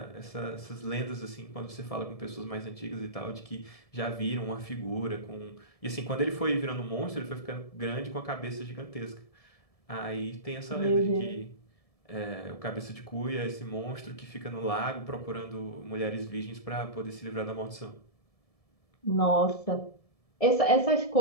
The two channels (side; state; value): right; late; 1.7 ms